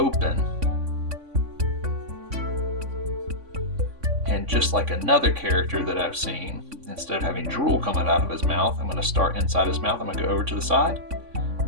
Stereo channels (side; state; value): left; late; 3.5 ms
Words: And just like another character that I've seen, instead of having drool coming out of his mouth, I'm going to start inside his mouth. I'm going to go over to the side.